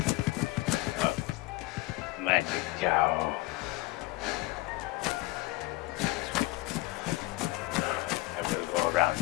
Oh, magic cow. I will go around.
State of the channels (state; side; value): quieter; right; 20.0 dB